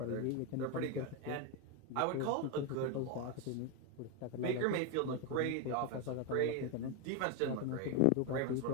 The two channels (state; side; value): different; both; correlation 0.02